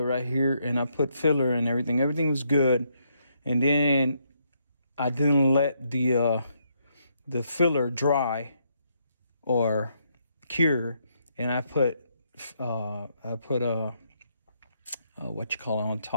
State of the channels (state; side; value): inverted; both; correlation -0.75